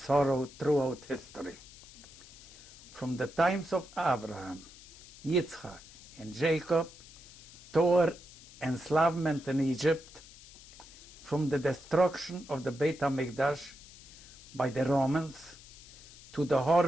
throughout history. From the times of Abraham, Yitzchak, and Jacob, toward enslavement in Egypt, from the destruction of the Beit HaMikdash by the Romans, to the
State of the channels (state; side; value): noise; left; hiss, 19 dB below the sound